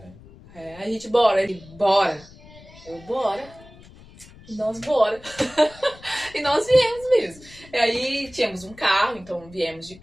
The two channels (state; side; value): noise; left; rumble, 22 dB below the sound